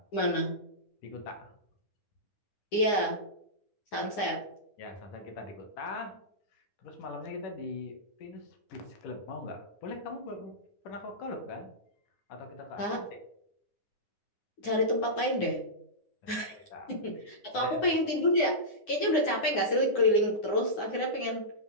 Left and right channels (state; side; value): late; right; 9.7 ms